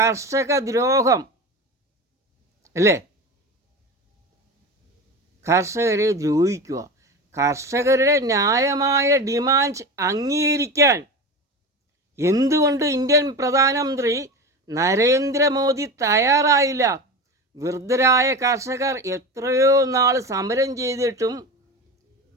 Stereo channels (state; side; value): normal; both; correlation 0.27